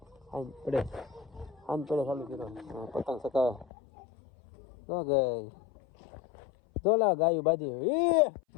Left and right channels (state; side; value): drops out; right; at 3.7 s